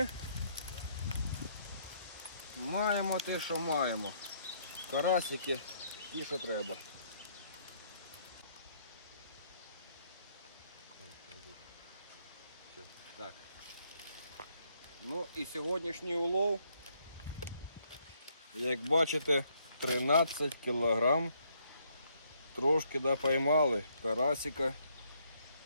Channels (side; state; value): both; inverted; correlation -0.70